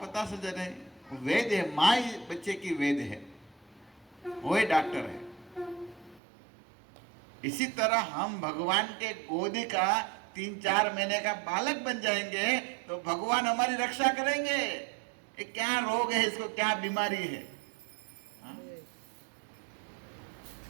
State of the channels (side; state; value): left; drops out; at 6.2 s